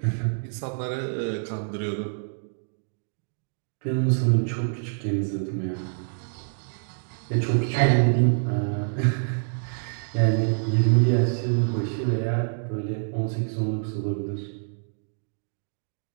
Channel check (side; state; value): left; silent; digital silence